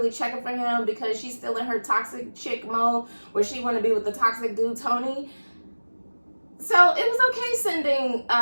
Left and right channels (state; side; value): inverted; both; correlation -1.00